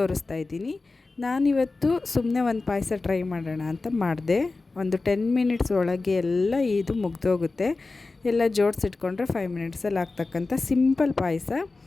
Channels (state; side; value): quieter; right; 3.6 dB